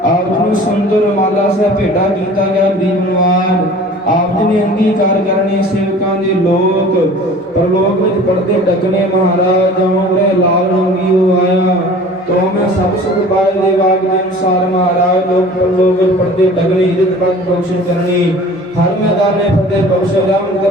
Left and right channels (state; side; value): normal; both; correlation 0.44